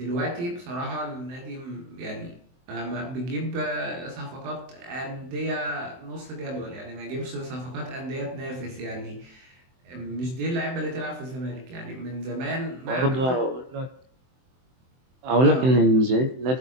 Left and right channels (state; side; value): late; left; 23 ms